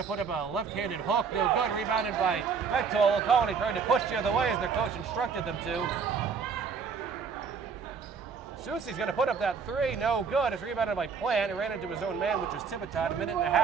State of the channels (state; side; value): quieter; left; 5.7 dB